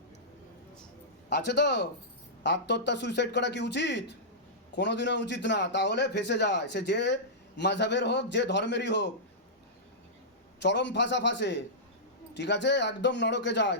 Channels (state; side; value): normal; both; correlation -0.14